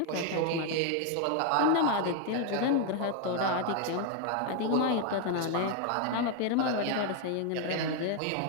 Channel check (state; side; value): different; both; correlation 0.01